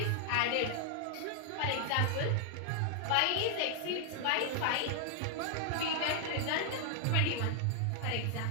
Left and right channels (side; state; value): both; different; correlation 0.00